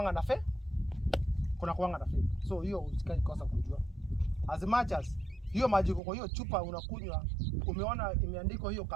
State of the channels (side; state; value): left; drops out; at 6.0 s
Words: na fake, kuna kuanga na fake. So hiyo usikae kosa kujua. As much as hiyo maji kwa hiyo chupa unakunywa, umeona imeandikwa hiyo